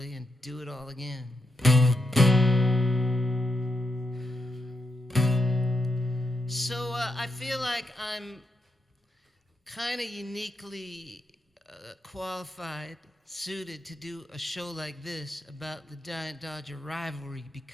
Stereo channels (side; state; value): both; normal; correlation 0.84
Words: and do it all again. So I feel like I'm kind of uniquely qualified, suited to do a show like this about the Giant-Dodger rivalry